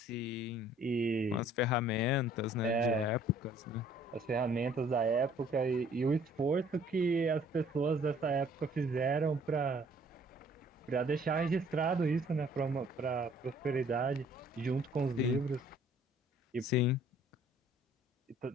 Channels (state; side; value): normal; both; correlation 0.57